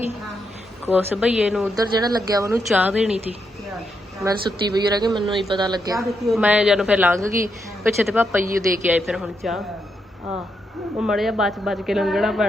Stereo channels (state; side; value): normal; both; correlation 0.81